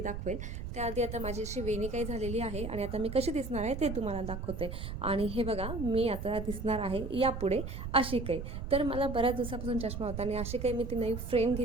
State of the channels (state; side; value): noise; right; rumble, 6 dB below the sound